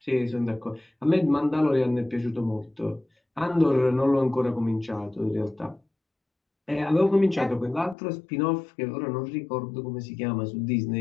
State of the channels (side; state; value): right; drops out; at 8.0 s